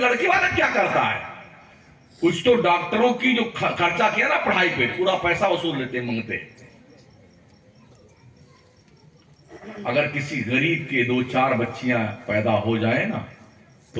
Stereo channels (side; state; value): both; identical; correlation 1.00